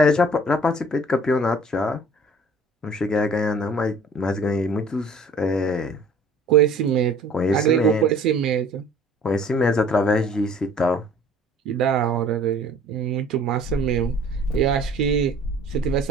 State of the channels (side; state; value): both; normal; correlation 0.52